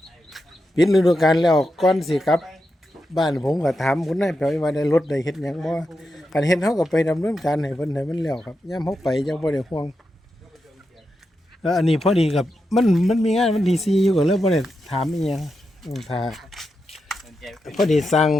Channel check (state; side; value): normal; both; correlation 0.87